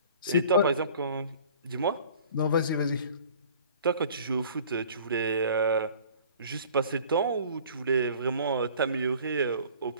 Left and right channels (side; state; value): both; inverted; correlation -0.48